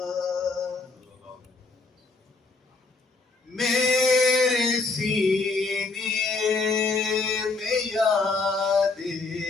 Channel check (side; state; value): right; quieter; 3.8 dB